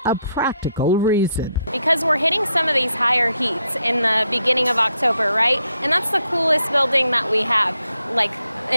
a practical reason. Because we're hitting some of these higher heats in the beginning of October, right? And that's the coolest building that we have, like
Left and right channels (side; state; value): both; inverted; correlation -0.78